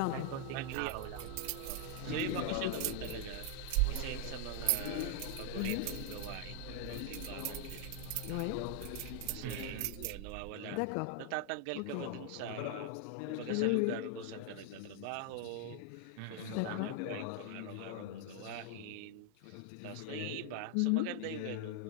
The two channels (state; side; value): different; both; correlation 0.00